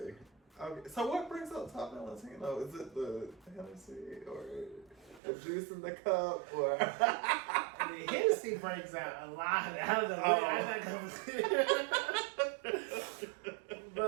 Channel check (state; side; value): drops out; left; at 5.2 s